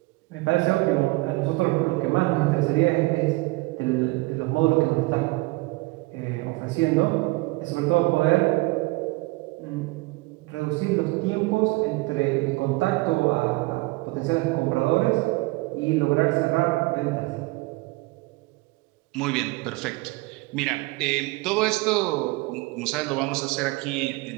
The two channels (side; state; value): left; quieter; 23.0 dB